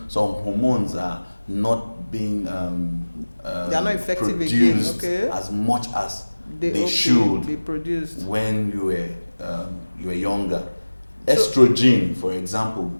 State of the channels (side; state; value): both; inverted; correlation -1.00